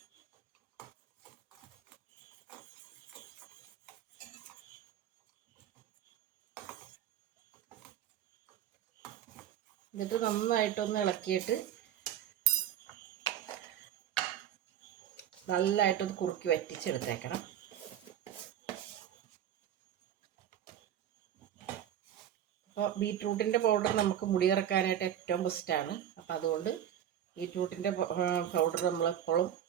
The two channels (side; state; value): left; quieter; 10.4 dB